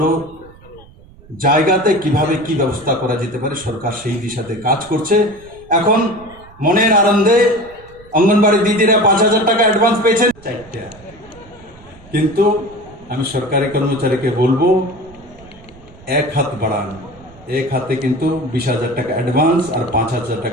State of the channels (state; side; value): noise; right; rumble, 23 dB below the sound